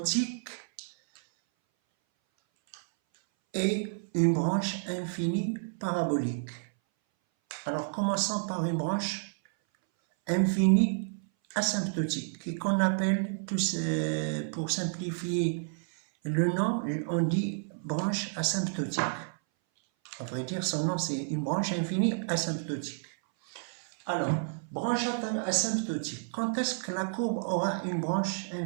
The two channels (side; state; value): left; silent; 58 dB below the other